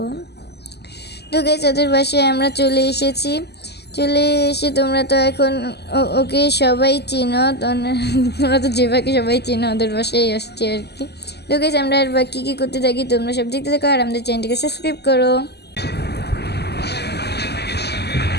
তো গাইস, ওদের বাসায় আমরা চলে এসেছি। চলে এসে তোমরা তো এখন ওকে সবাই চিনো, তোমরা তো যেভাবে সবাই চিনো ওদের বাসায় আসছে আর কি। তো গাইস, আমরা আর বাকি কী করতে থাকি তোমরা সব দেখতে থাকো আর আমাদের চ্যানেলটিকে সাবস্ক্রাইব করো।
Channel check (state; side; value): late; right; 0.48 ms